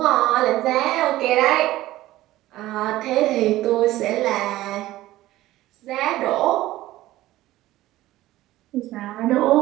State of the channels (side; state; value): left; quieter; 16.1 dB